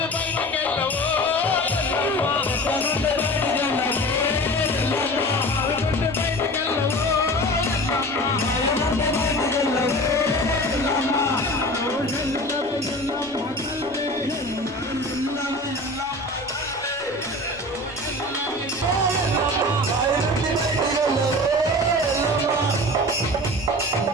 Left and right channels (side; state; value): left; noise; rumble, 25 dB below the sound